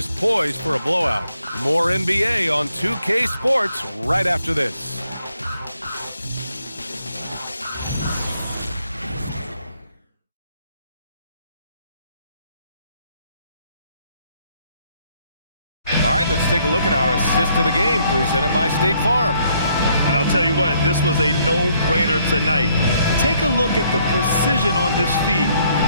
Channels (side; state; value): both; inverted; correlation -0.69